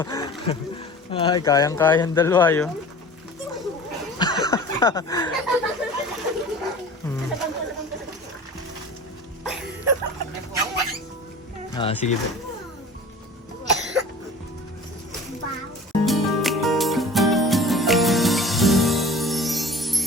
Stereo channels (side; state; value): both; normal; correlation 0.41